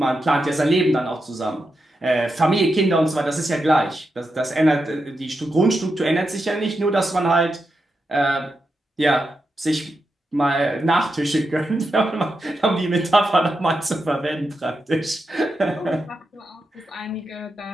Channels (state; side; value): normal; both; correlation 0.87